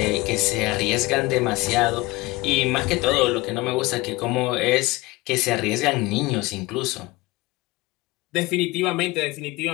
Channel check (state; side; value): quieter; right; 21.4 dB